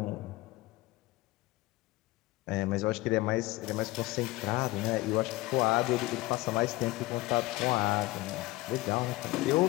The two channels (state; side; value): quieter; right; 19.7 dB